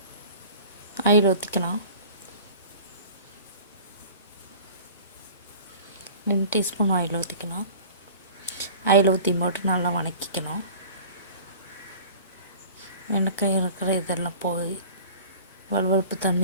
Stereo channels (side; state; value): both; inverted; correlation -0.43